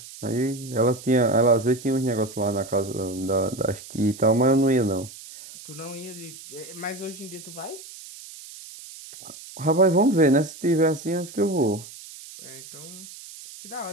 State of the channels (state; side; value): noise; right; hiss, 16 dB below the sound